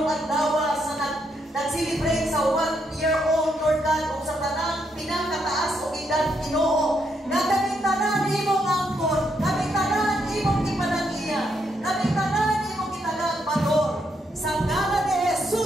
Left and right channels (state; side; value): normal; both; correlation 0.77